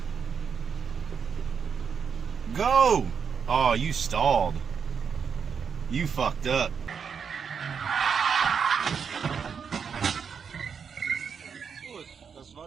Go! Oh, you stalled. You fucked up. Gut, das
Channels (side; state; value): left; quieter; 6.5 dB